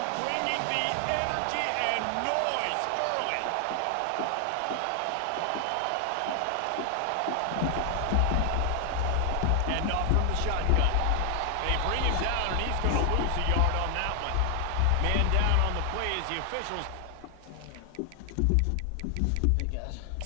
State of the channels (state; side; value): different; both; correlation 0.00